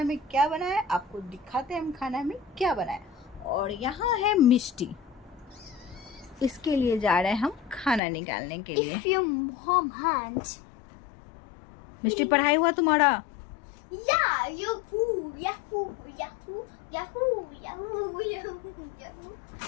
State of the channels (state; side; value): drops out; right; at 8.0 s